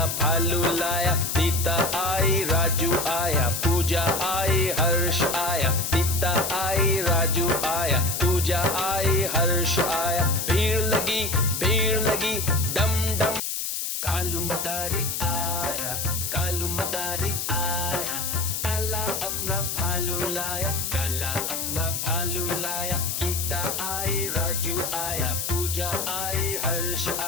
भालू लाया। सीता आई राजू आया, पूजा आई हर्ष आया, सीता आई राजू आया, पूजा आई हर्ष आया। भीड़ लगी डम डम। कालू मदारी आया, कालू मदारी आया, काला अपना भालू लाया, काला अपना भालू लाया। सीता आई राजू आया, पूजा आई हर्ष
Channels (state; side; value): noise; left; hiss, 2 dB below the sound